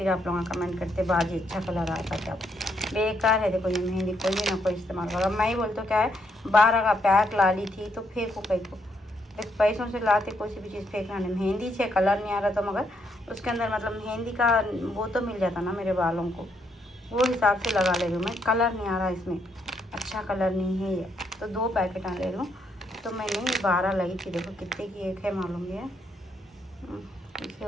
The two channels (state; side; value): normal; both; correlation 0.75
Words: आप लोग कमेंट करते बाजी अच्छा कलर आता क्या, बेकार है। देखो ये मेहंदी कोई भी ना कोई इस्तेमाल करो। मैं ही बोलती हूँ क्या है, 12 का पैक ला ली थी तो फेंको कहीं को, देख पैसों से लाते कोई सी भी चीज़ फेंकना नहीं। मेहंदी से कलर नहीं आ रहा, तो मगर उसके अंदर मतलब मेहंदी का वो तो मिल जाता ना मेरे बालों को, वो हिसाब से लगा ले रही हूँ मैं। कलर नहीं आ रहा इसमें, अच्छा कलर नहीं है ये, तो 2 पैकेट ले लूँ। तो मैंने 12 लगी थी। देखो कितने की एक है मालूम है,